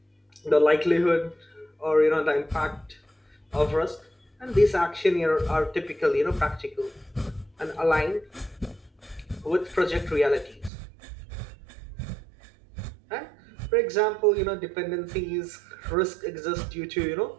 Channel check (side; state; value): left; drops out; at 10.7 s